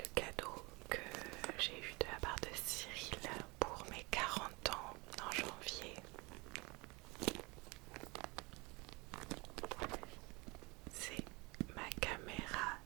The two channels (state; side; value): quieter; left; 26.3 dB